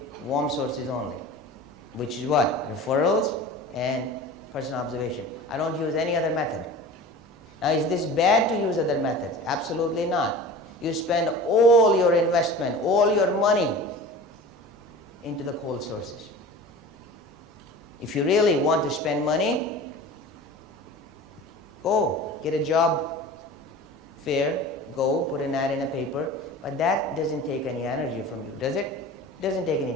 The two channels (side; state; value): both; normal; correlation 0.37